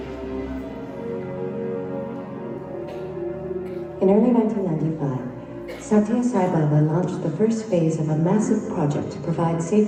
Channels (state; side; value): identical; both; correlation 1.00